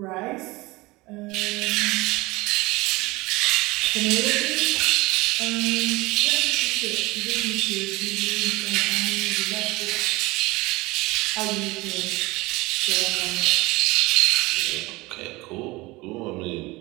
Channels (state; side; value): quieter; left; 22.0 dB